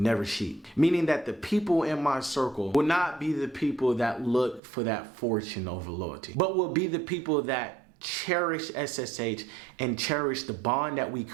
sheep. Meaning that the people in my circle will not be the people that look for that fortune over loyalty, but will be the people that cherish SSH and cherish the bond that we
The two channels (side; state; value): left; drops out; at 4.6 s